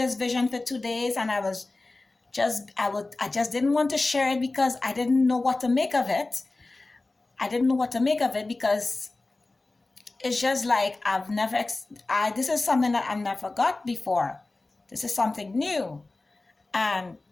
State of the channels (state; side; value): quieter; right; 3.2 dB